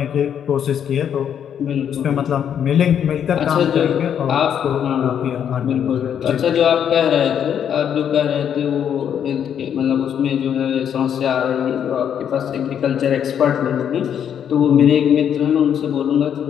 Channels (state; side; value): quieter; right; 8.8 dB